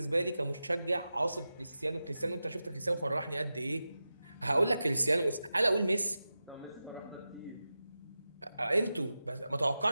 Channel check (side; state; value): both; inverted; correlation -0.93